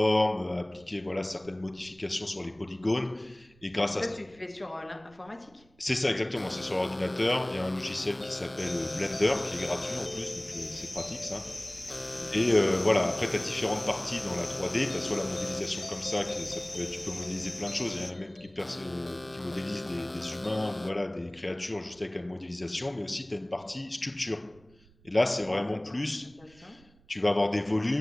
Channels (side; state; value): right; noise; rumble, 28 dB below the sound